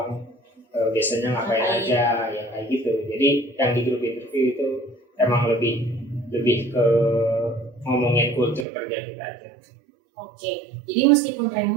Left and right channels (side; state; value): left; drops out; at 8.7 s